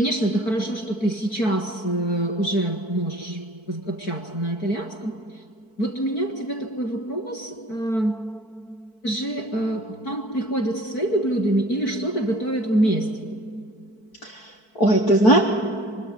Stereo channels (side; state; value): right; late; 4.6 ms